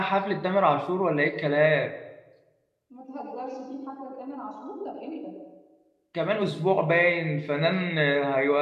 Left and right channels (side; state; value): both; identical; correlation 1.00